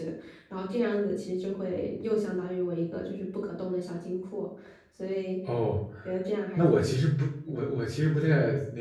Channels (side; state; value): both; identical; correlation 1.00